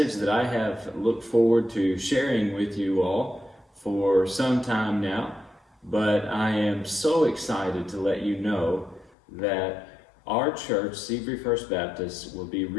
that I have looked forward to sharing with you all for some time now. But I am so excited to let you know that our church, Seabury First Baptist, will be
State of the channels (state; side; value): drops out; right; at 9.2 s